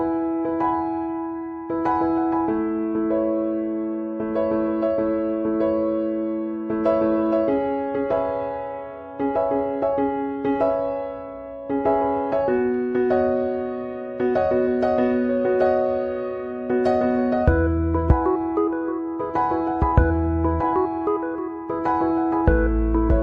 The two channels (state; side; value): identical; both; correlation 1.00